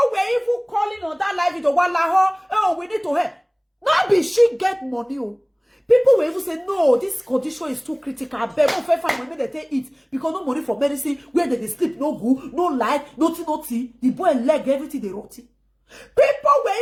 were even calling on that live video. Oh, we need to help. Now be she get money. Oh. People will even say, no, this condition is too critical. I beg no fair family when they take it. Because no money for medicine, where they sleep, no good, no light, nothing. The boy leg, everything they rotty. People were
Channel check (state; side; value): identical; both; correlation 1.00